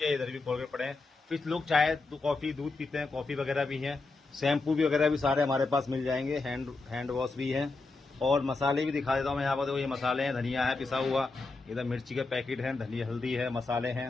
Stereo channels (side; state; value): right; quieter; 3.6 dB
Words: है। इधर भी कोलगेट पड़े हैं। फिर लोग चाय कॉफी दूध पीते हैं, कॉफी वगैरह भी है। शैम्पू भी वगैरह भी सारे हमारे पास मिल जाएंगे। हैंड वॉश भी है। और मसाले भी दिखा देता हूँ मैं यहाँ पर। देखो ये मसाले हैं, धनिया है पिसा हुआ, इधर मिर्ची के पैकेट हैं, धनिया हल्दी है, मसाले